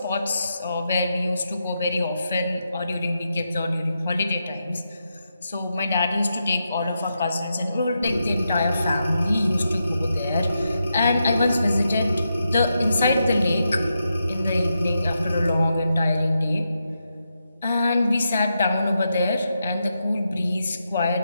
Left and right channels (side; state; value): both; inverted; correlation -0.85